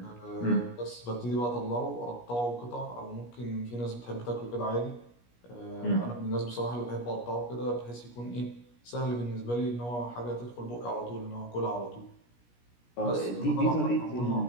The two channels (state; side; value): late; right; 17 ms